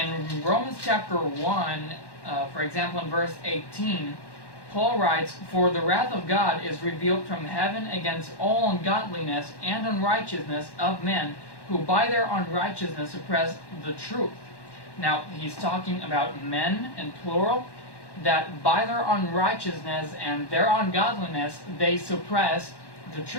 Romans chapter 1, for example, in verse 18, Paul writes, "For the wrath of God is revealed from heaven against all ungodliness and unrighteousness of men, who by their unrighteousness suppress the truth." Now, he's talking about men in plural, that by their unrighteousness and their ungodliness, they suppress the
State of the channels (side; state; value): right; late; 1.1 ms